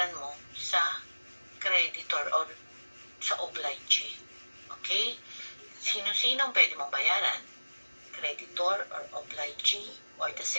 mo sa creditor or sa obligee. Okay? Sino-sino ang pwede mong bayaran? Creditor or obligee or the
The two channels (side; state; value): both; inverted; correlation -1.00